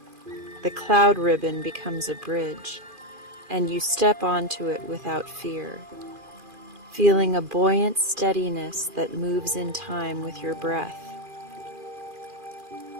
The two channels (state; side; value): late; left; 2.4 ms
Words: The cloud ribbon becomes a bridge, and you step onto it without fear. feeling a buoyant steadiness that moves in time with your breath.